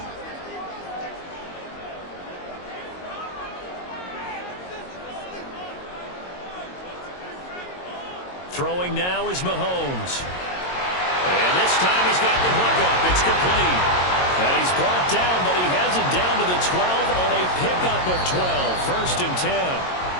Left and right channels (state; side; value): late; right; 22 ms